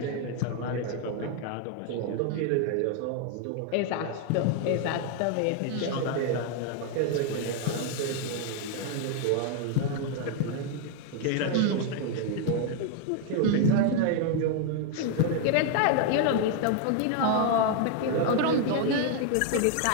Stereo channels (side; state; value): both; different; correlation 0.00